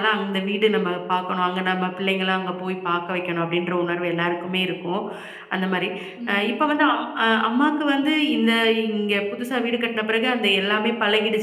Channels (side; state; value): both; identical; correlation 1.00